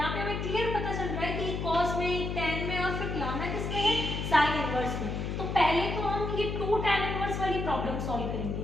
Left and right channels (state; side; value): noise; left; hum, 3 dB below the sound